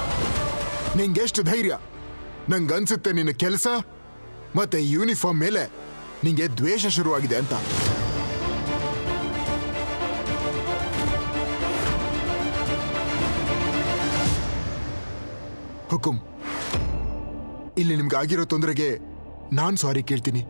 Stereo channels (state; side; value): inverted; both; correlation -1.00